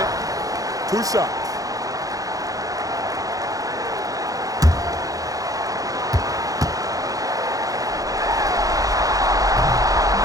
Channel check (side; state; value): left; late; 0.17 ms